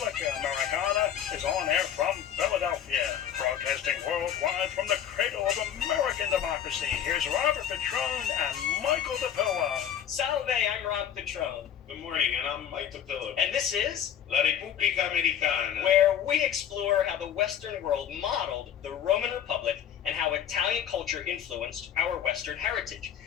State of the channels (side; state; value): right; quieter; 9.4 dB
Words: Americana is on air from Philadelphia, broadcasting worldwide from the cradle of American democracy. Here's Robert Petrone and Michael DePilla. Salve, I'm Rob Petrone. Good morning, and I'm Mike DePilla. And this is La Repubblica Americana, where we explore how the Western world modeled the Roman Republic and how Italian culture influenced our Western heritage.